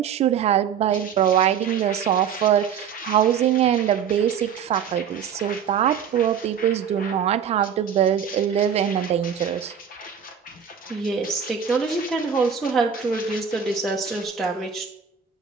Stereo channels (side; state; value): left; quieter; 7.7 dB